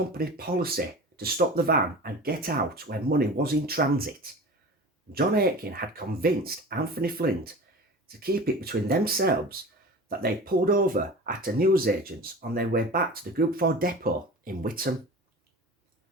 policy to stop the van and get out when money was in transit, John Aitken had convinced Anthony Flint to keep it between themselves that they pulled over at a newsagents on their way back to the Group 4 depot in Witham.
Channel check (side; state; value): both; normal; correlation 0.36